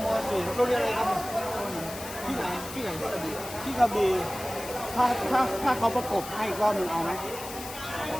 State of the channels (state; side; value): noise; left; hiss, 11 dB below the sound